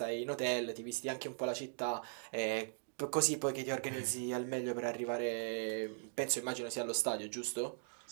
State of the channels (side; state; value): left; silent; digital silence